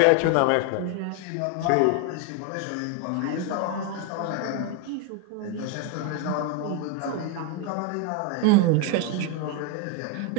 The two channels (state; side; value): different; both; correlation 0.01